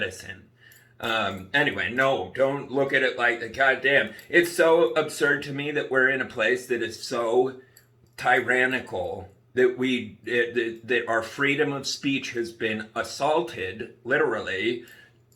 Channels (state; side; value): identical; both; correlation 1.00